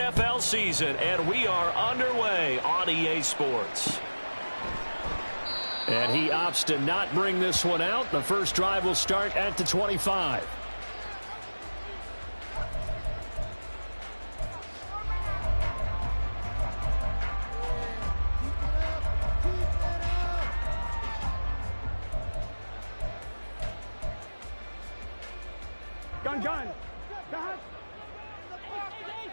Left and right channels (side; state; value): both; inverted; correlation -1.00